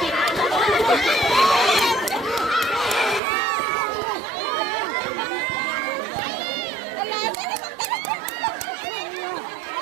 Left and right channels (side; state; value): left; drops out; at 3.2 s